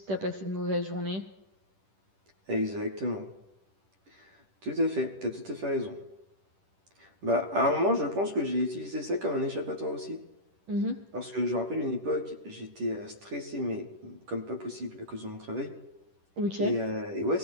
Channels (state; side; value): late; left; 10 ms